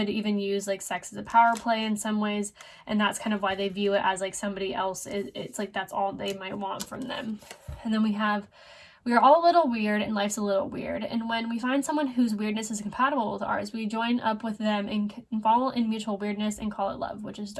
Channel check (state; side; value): identical; both; correlation 1.00